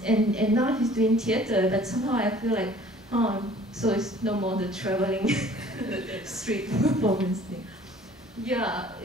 and now he's doing theater, but somehow I feel like, oh, so it's no more the traveling street performance thing. Yeah,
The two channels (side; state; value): both; normal; correlation 0.52